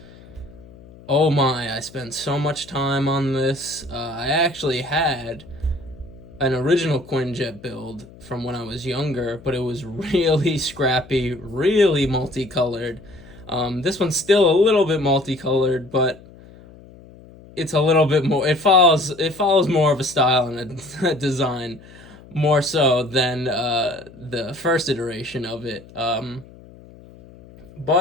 Oh my, I spent so much time on this. I actually had an original Quinjet build from when I was younger, but it was really scrappy, really multicolored. This one's still a little bit multicolored, but it's a little bit more. It follows more of a style and a design, more so than the first iteration of it.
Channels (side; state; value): left; noise; hum, 21 dB below the sound